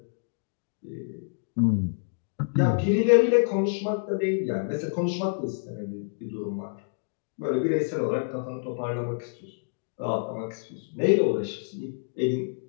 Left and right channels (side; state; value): right; silent; digital silence